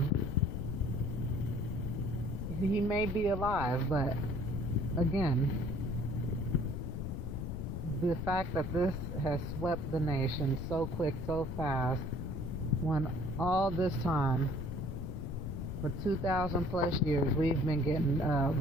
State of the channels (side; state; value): left; noise; rumble, 4 dB below the sound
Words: He may be alive, but again, the fact that this has swept the nation so quick, so fast, when all this time, for 2,000 plus years, we've been getting